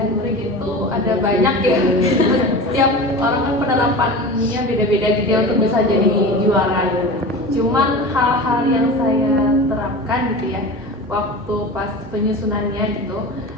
trick itu ada banyak ya. Setiap orang kan penerapannya beda-beda gitu ya untuk bisa jadi juara gitu. Cuman hal-hal yang saya terapkan gitu ya waktu pas penyusunannya gitu,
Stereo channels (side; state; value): both; normal; correlation 0.32